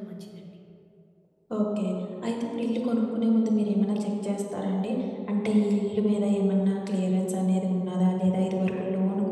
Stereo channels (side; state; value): both; identical; correlation 1.00